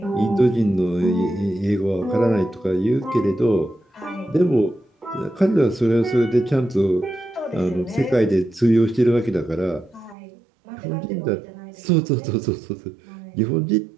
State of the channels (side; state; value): left; drops out; at 10.2 s